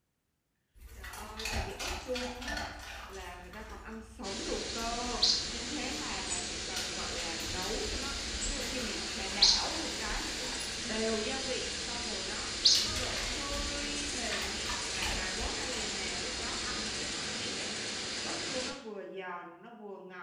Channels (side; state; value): both; identical; correlation 1.00